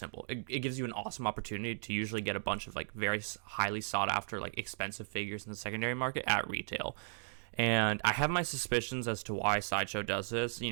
It gives you an awesome opportunity to usually get a bunch of like very highly sought after like expensive figures in the secondary market at retail. And I have my suspicions as to why Sideshow does this.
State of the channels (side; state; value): left; silent; digital silence